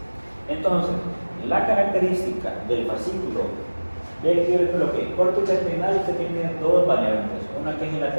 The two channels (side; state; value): both; inverted; correlation -1.00